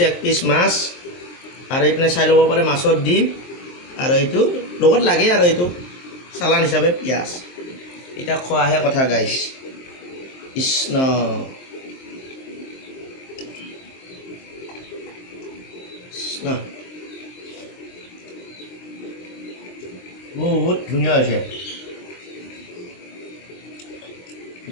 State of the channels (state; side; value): late; right; 23 ms